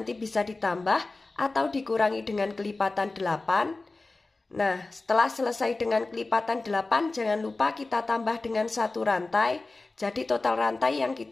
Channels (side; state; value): right; quieter; 3.4 dB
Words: bisa ditambah atau dikurangi dengan kelipatan 8. Nah, setelah selesai dengan kelipatan 8, jangan lupa kita tambah dengan 1 rantai. Jadi total rantai yang